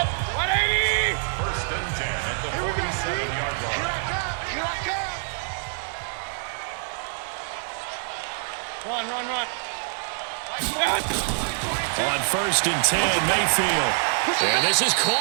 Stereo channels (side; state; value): left; silent; digital silence